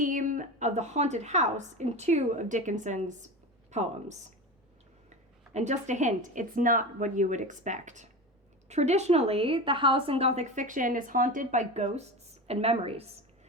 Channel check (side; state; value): both; normal; correlation 0.27